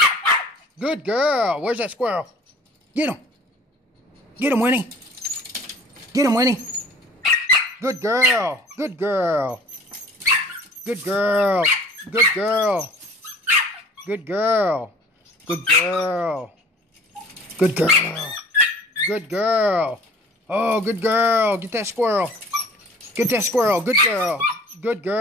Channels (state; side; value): normal; both; correlation 0.48